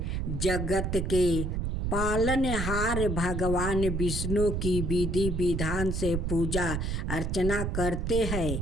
जगत के पालनहार भगवान विष्णु की विधि विधान से पूजा अर्चना करते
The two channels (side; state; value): right; noise; rumble, 1 dB below the sound